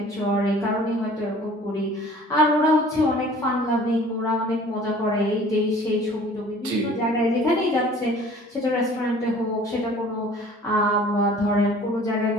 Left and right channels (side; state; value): both; normal; correlation 0.49